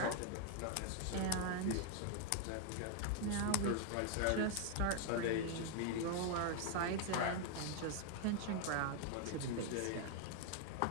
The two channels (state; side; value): different; both; correlation 0.00